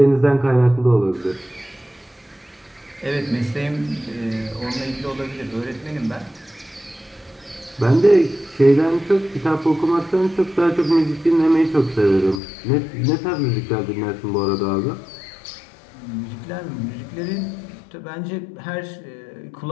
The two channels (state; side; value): drops out; right; at 12.4 s